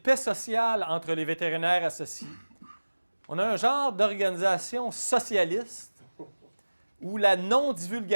sociale entre les vétérinaires associés. On a un genre d'organisation socialiste où la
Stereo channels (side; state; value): both; inverted; correlation -1.00